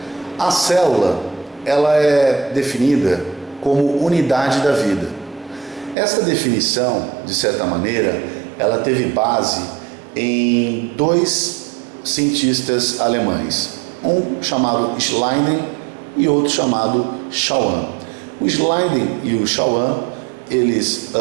A célula, ela é definida como unidade da vida. Essa definição, de certa maneira, ela teve base em dois cientistas alemães, um chamado Schleiden e outro chamado Schwann. O Schleiden e o Schwann, eles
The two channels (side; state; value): left; drops out; at 6.0 s